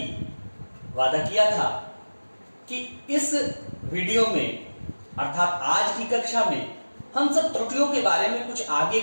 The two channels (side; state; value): both; inverted; correlation -1.00